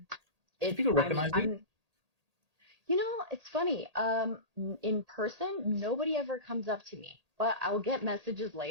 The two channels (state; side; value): late; left; 1.8 ms